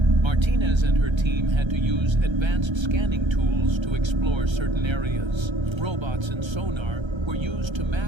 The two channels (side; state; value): left; late; 1.3 ms